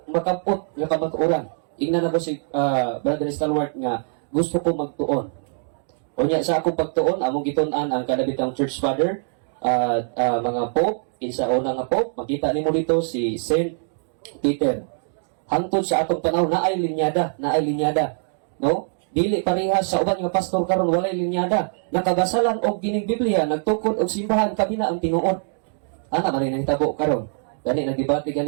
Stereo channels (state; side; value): silent; left; digital silence